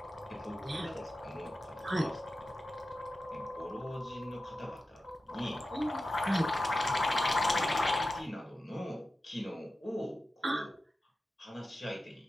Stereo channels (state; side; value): normal; both; correlation 0.93